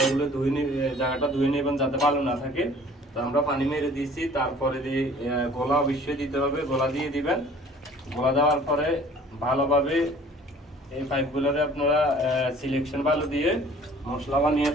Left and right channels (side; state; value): both; normal; correlation 0.51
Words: জায়গাটা ধুয়ে নেবেন যাতে ভালো না থাকে। তো আমরা পানি মেরে দিয়েছি, তারপরে দিয়ে গোলা অবশ্যই দিতে হবে, গোলা দিয়ে দিবেন। গোলা দেওয়ার পরে ভালোভাবে এই পাইপগুলোরে আপনারা সিলেকশন ভালো দিয়ে মশলা বানিয়ে